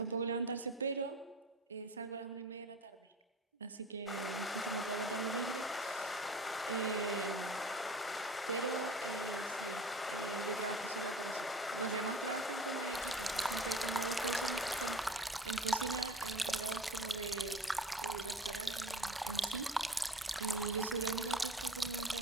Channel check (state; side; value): normal; both; correlation 0.39